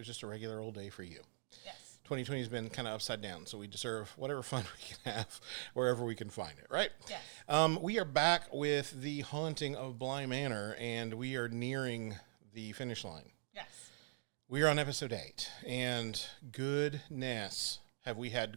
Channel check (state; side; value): silent; left; digital silence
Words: just a regular old day for you. Yes. 2020 has been kind of upside down, so we deserve whatever fun we can have wherever we can find it, right? Yes. We are back with the Haunting of Bly Manor, and we are nearing the finish line. Yes. We are on episode 8, and goodness, have we